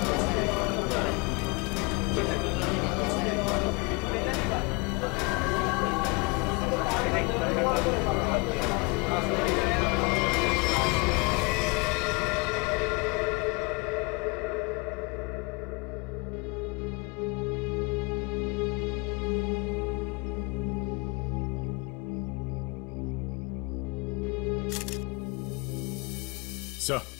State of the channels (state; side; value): quieter; right; 28.9 dB